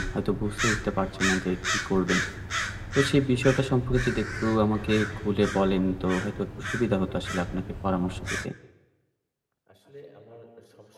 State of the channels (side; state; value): both; identical; correlation 1.00